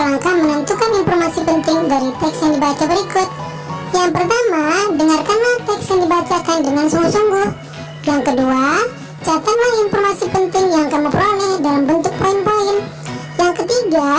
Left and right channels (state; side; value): identical; both; correlation 1.00